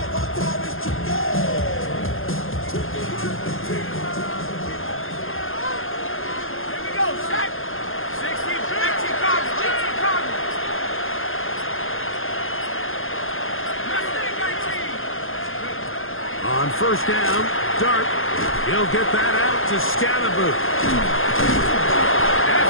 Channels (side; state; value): right; late; 0.60 ms